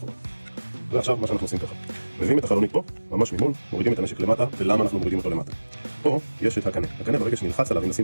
ועכשיו מה שאנחנו עושים ככה. מביאים את החלונית פה, ממש ממול, מורידים את הנשק למטה, ולמה אנחנו מורידים אותו למטה? פה יש את הקנה. הקנה ברגע שנלחץ עליו, אם נשים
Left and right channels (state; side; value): inverted; both; correlation -1.00